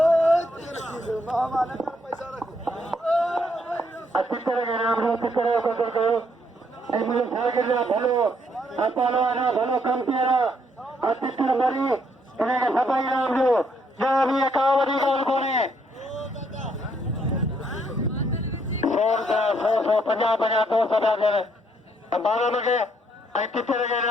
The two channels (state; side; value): normal; both; correlation 0.71